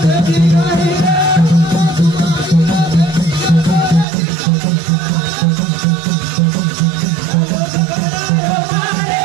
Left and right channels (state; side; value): drops out; left; at 4.0 s